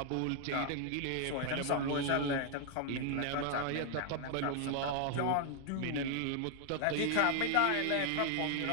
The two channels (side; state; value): both; different; correlation 0.00